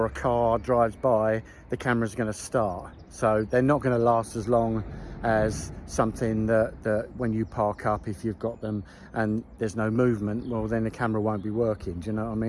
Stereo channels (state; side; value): identical; both; correlation 1.00